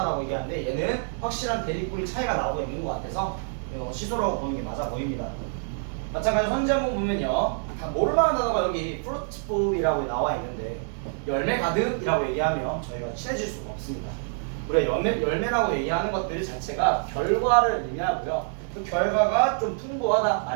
얘기하는데 얘는 확실한 대립군이 차이가 나오고 있는 것 같아서 시소라고 보는 게 맞아 보입니다. 마찬가지로 현재 한번 보면요, 다 모를만한 단어가 여기 fruitful이라고 나와 있는데 열매 가득이라고 얘기하면 저희가 친해질 수가 없습니다. 우리가 열매라고 얘기하는 것들 자체가 결과를 의미하고요. 그 결과가 좀 풍부하다,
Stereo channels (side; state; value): left; silent; 61 dB below the other